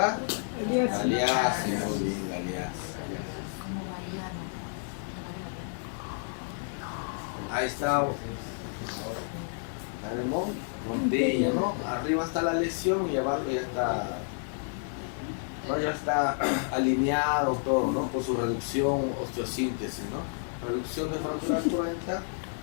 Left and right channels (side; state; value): right; silent; 58 dB below the other